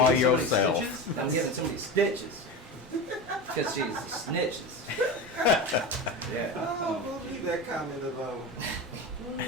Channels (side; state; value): both; normal; correlation 0.24